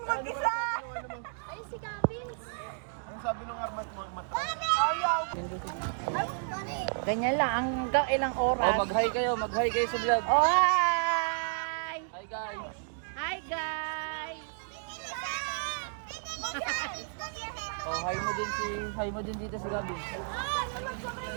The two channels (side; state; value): left; silent; digital silence